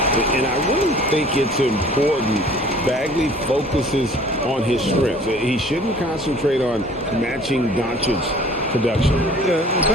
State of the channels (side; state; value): both; normal; correlation 0.50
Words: And I really think it's important Bagley focuses on his strengths. He shouldn't concentrate on matching Doncic's production. Yeah,